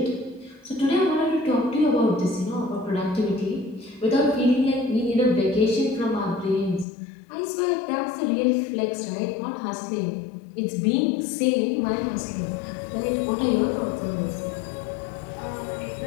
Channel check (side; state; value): right; drops out; at 6.9 s